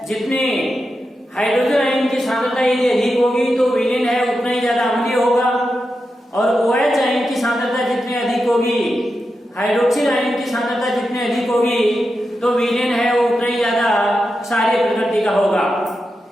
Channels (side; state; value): both; normal; correlation 0.89